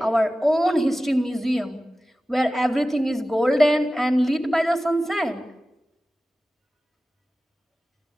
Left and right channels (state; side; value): normal; both; correlation 0.95